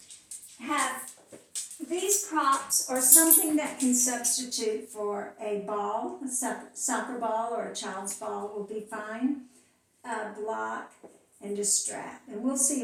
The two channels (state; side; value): identical; both; correlation 1.00